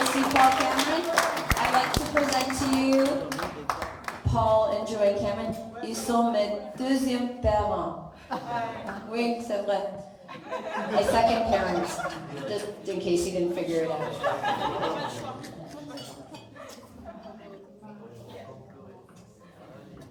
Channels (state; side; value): identical; both; correlation 1.00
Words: aussi Paul Cameron. I'd like to present to you Paul and Joanne Cameron. Ils sont mes deuxièmes parents. Oui, c'est vrai. My second parents, just in case you didn't figure it out.